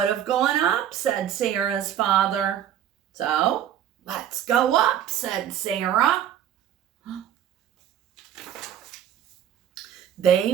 have gone up, said Sarah's father. So, let's go up, said Sarah. They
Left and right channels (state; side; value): quieter; left; 10.3 dB